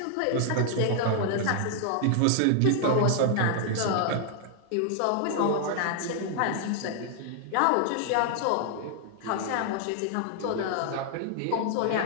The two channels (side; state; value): both; different; correlation 0.00